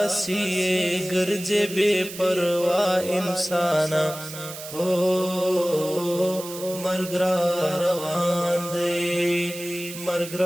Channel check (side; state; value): right; noise; hiss, 12 dB below the sound